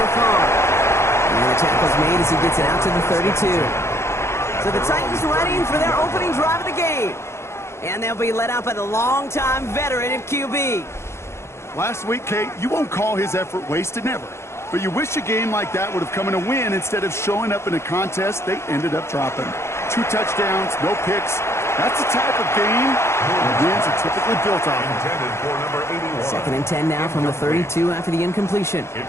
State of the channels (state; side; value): late; right; 0.13 ms